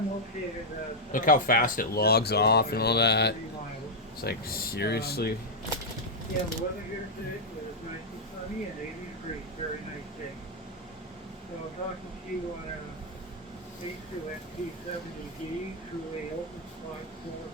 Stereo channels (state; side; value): normal; both; correlation -0.04